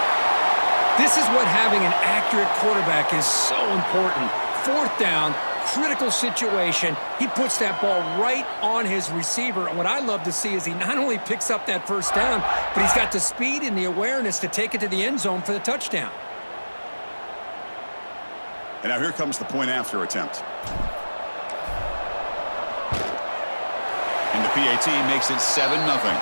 This is what having an accurate quarterback is so important. Fourth down, critical situation. He puts that ball right on his receiver. And what I love to see is he not only picks up that first down, but he's got the speed and the awareness to take it to the end zone for the touchdown. And now here comes the point after attempt. And the PAT makes it 7-0.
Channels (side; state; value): both; inverted; correlation -1.00